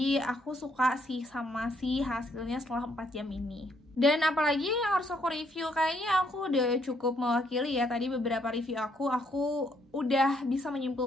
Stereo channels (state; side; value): normal; both; correlation 0.71